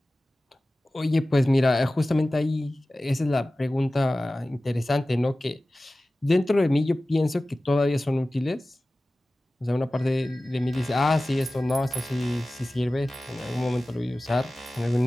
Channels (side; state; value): both; normal; correlation 0.96